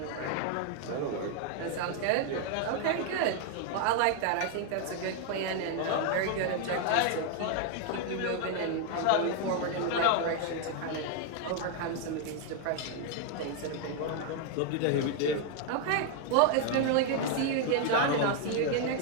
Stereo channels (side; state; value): both; different; correlation 0.00